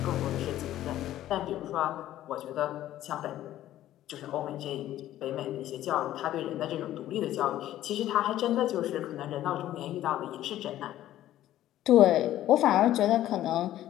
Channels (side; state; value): right; quieter; 13.3 dB